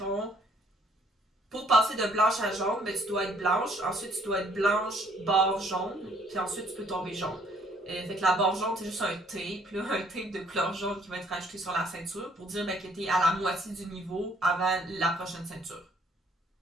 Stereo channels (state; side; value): normal; both; correlation 0.62